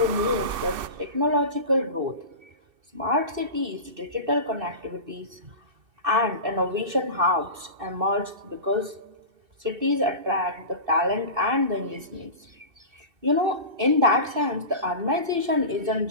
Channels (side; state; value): left; late; 2.6 ms